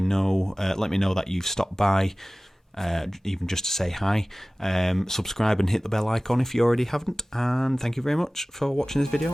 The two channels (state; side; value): normal; both; correlation 0.98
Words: know that you've stopped by, even just to say hi. Subscribe and hit the bell icon if you already haven't, and thank you very much for watching this video,